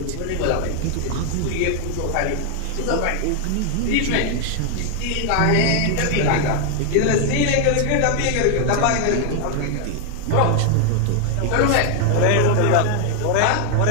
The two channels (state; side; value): different; both; correlation 0.00